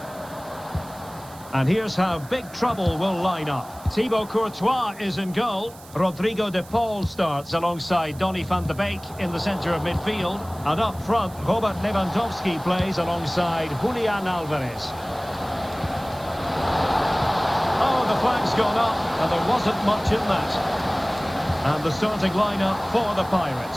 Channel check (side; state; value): right; noise; hiss, 21 dB below the sound